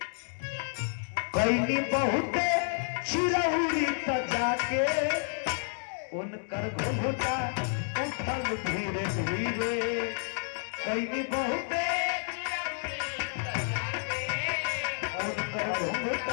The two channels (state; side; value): silent; right; 58 dB below the other